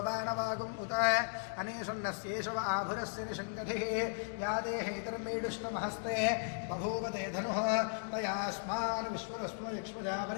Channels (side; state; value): right; silent; digital silence